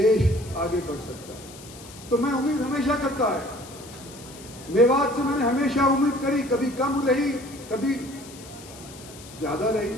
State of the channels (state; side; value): noise; left; hiss, 18 dB below the sound